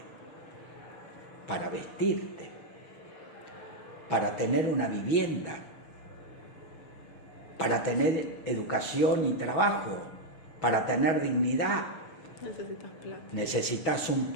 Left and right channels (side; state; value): right; late; 6.1 ms